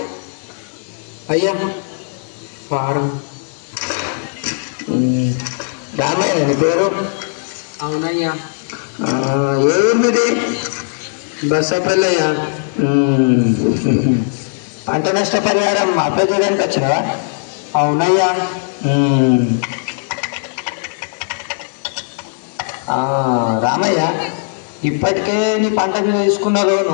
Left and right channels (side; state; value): right; silent; digital silence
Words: అయ్యా ఫారం. రామయ్య నీ పేరు? అవునయ్యా. ఏ ఊరు మీది? బస్సపల్లయ్యా. పంట నష్ట పరిహారం అప్లై చేయడానికి వచ్చినావా? అవునయ్యా. రామయ్య ఇప్పటికే నీ పంట మీద తీసుకున్న